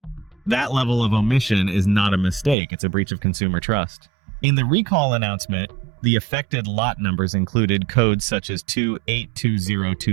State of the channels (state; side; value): drops out; left; at 2.6 s